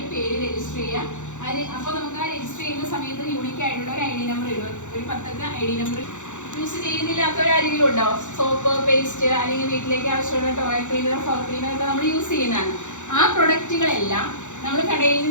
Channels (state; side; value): late; right; 0.85 ms